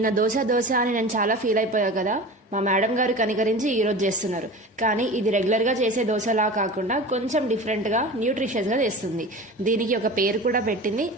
దోశ అని నేను చాలా ఫీల్ అయిపోయా కదా. మా మేడం గారు కనికరించి ఈరోజు చేస్తున్నారు. కానీ ఇది రెగ్యులర్గా చేసే దోశలా కాకుండా కొంచెం డిఫరెంట్గా న్యూట్రిషియస్గా చేస్తుంది. దీనికి ఒక పేరు కూడా పెట్టింది.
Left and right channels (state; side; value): normal; both; correlation 0.35